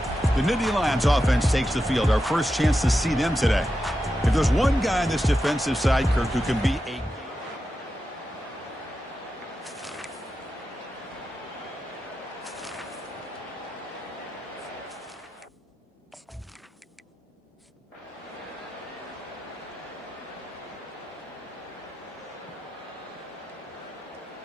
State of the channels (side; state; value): both; normal; correlation 0.89